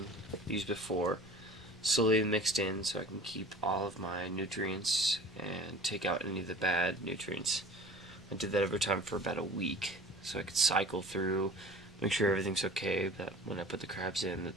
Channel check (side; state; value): both; normal; correlation 0.42